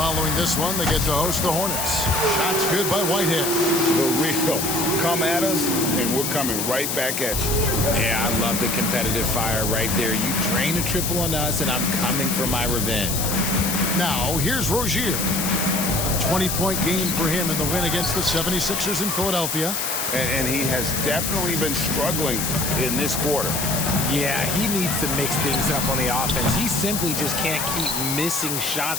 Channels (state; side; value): noise; left; hiss, 1 dB below the sound